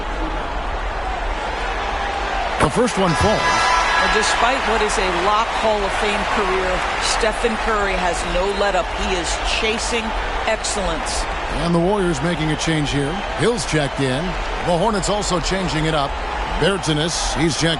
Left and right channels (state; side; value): identical; both; correlation 1.00